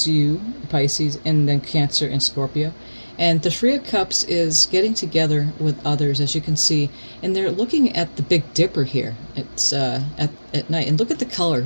and then Cancer and Scorpio. And the Three of Cups is getting together with others, as you can see. And they're looking at the Big Dipper here. It's at night. And look at the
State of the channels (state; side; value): inverted; both; correlation -1.00